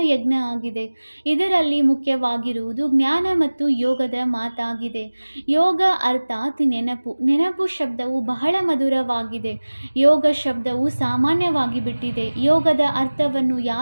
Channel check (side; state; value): both; inverted; correlation -1.00